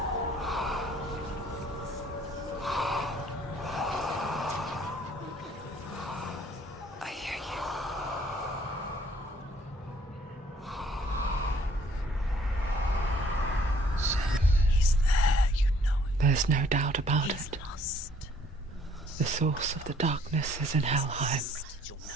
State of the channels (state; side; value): normal; both; correlation 0.60